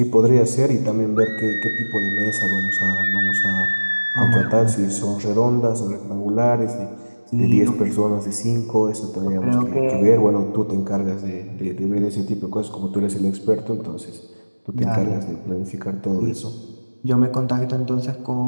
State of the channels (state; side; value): inverted; both; correlation -1.00